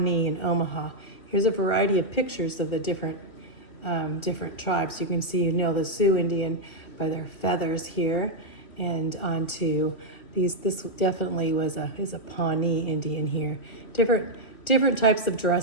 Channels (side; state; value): right; late; 2.7 ms